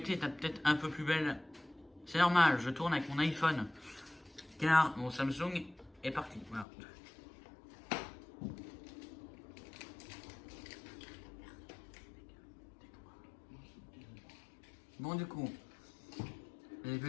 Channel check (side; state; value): right; drops out; at 6.7 s